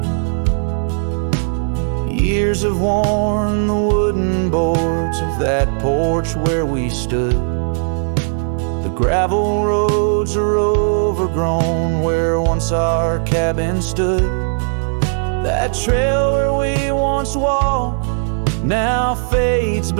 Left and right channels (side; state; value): left; silent; digital silence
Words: Years have worn the wooden boards of that porch where we stood. The gravel roads are overgrown where once our cabin stood. That trail where we once walked now fades